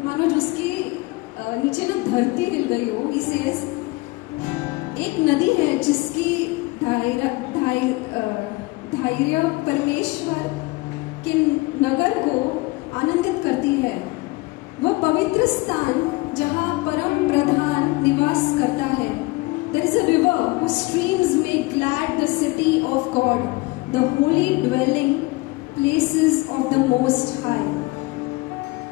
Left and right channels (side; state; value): right; quieter; 22.8 dB